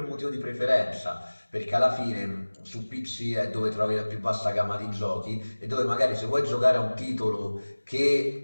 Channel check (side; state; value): both; inverted; correlation -1.00